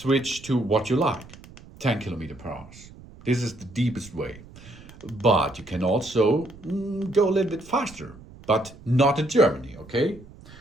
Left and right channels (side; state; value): right; noise; rumble, 20 dB below the sound